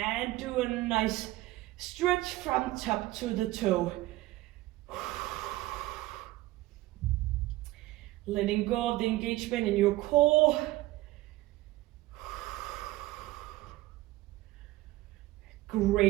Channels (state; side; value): quieter; left; 17.8 dB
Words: do a nice stretch from top to the toe. Letting go of the engagement in your core.